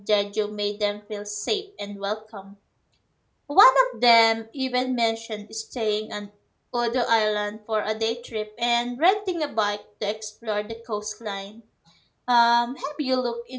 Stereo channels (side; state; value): both; identical; correlation 1.00